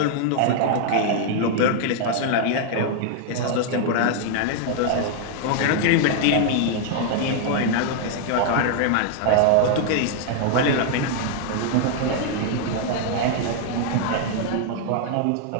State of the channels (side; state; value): both; different; correlation 0.00